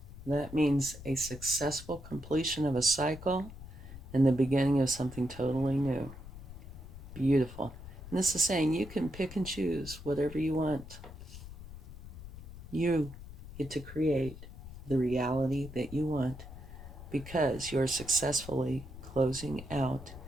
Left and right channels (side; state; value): left; noise; rumble, 13 dB below the sound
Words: That means a successful completion of a cycle and the beginning of something totally new. Beautiful. And this is saying you can pick and choose whatever you want. You get to create the reality that you want because you're successfully closing out